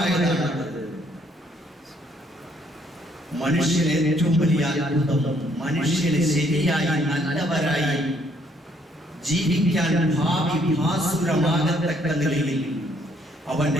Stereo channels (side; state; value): both; normal; correlation 0.67